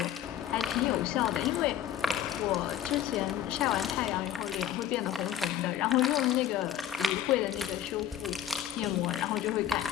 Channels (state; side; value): quieter; right; 10.8 dB